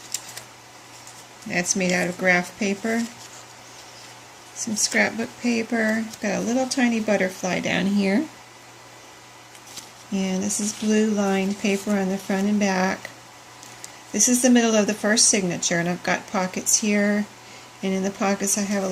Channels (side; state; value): both; identical; correlation 1.00